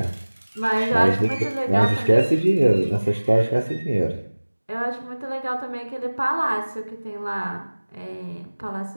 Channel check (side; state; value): both; inverted; correlation -1.00